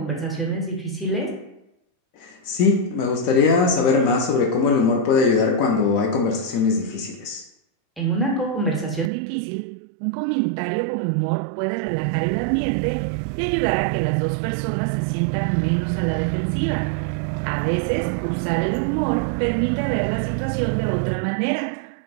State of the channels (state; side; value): drops out; left; at 9.1 s